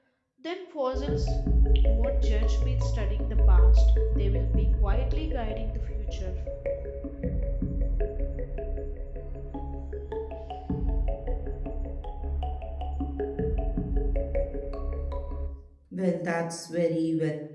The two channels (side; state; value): both; identical; correlation 1.00